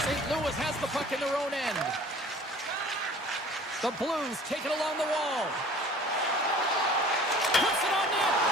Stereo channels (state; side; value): normal; both; correlation 0.47